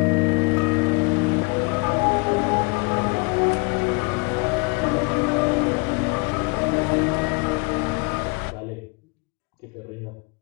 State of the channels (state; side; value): quieter; right; 30.7 dB